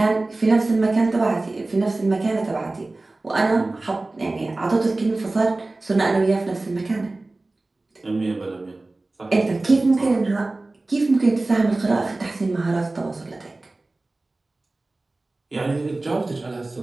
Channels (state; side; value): quieter; left; 3.1 dB